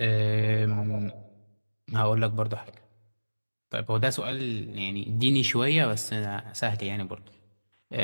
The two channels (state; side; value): inverted; both; correlation -1.00